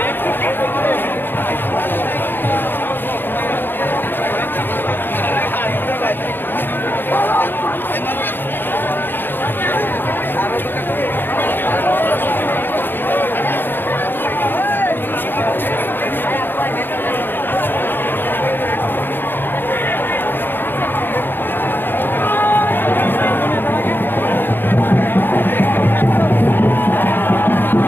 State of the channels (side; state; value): right; late; 0.097 ms